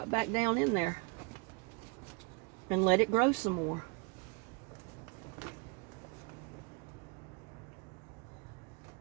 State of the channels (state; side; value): quieter; left; 30.8 dB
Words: back down in there. And let it grow some more.